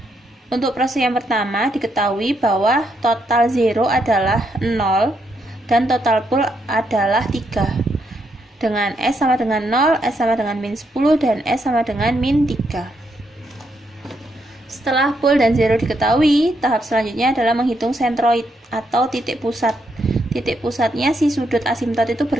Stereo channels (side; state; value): both; normal; correlation 0.78